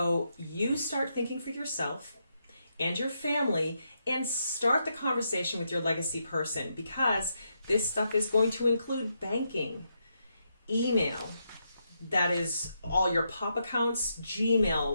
you start thinking for yourself and your family and start the conversation with your legacy person, because this stuff is going to include banking, email, that is all your pop accounts,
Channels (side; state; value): both; inverted; correlation -0.81